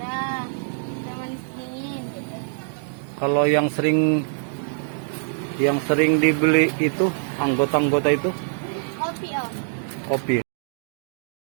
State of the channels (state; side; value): silent; left; digital silence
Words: Ada manis dingin. kalau yang sering dibeli itu anggota-anggota itu Kopi om. kopi.